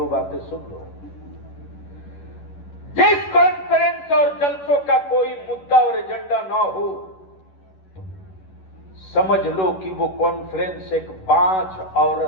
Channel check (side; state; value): right; late; 11 ms